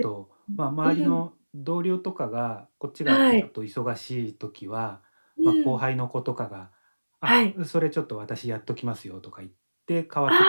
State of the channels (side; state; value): both; inverted; correlation -1.00